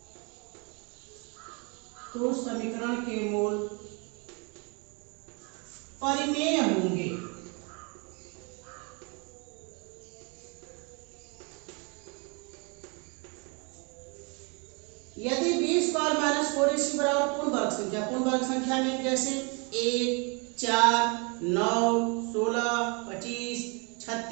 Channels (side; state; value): left; quieter; 32.7 dB